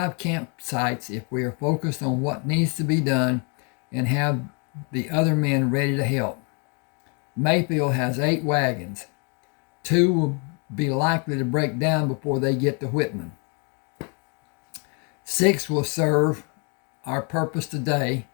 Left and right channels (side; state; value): right; quieter; 35.4 dB